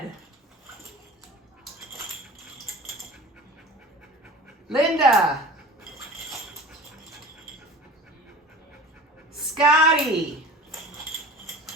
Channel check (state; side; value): normal; both; correlation 0.39